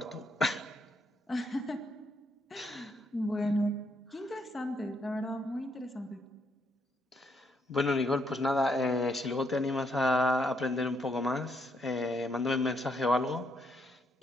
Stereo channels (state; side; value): normal; both; correlation 0.75